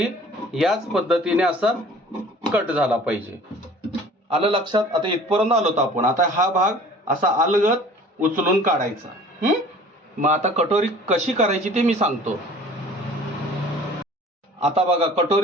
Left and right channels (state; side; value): normal; both; correlation 0.48